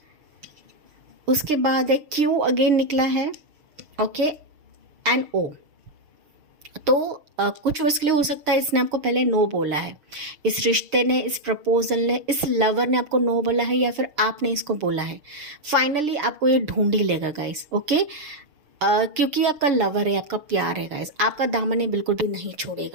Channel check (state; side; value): late; left; 6.6 ms